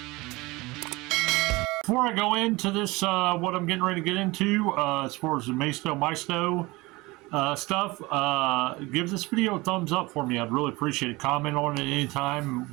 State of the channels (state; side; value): quieter; left; 22.4 dB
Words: Before I go into this, what I'm getting ready to get into as far as the Maisto stuff, give this video a thumbs up for me. I'd really appreciate it. Comment on it